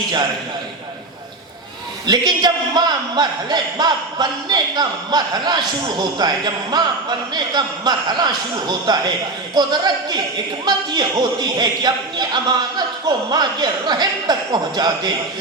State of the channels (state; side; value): quieter; left; 3.1 dB